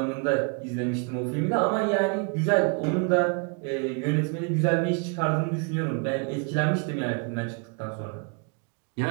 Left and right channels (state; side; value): quieter; left; 34.3 dB